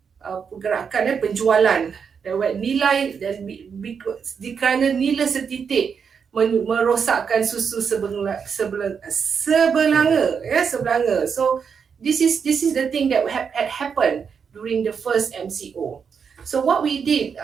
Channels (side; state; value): left; quieter; 6.5 dB